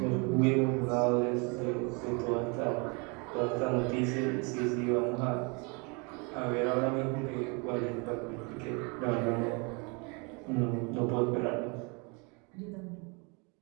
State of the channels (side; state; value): left; quieter; 31.7 dB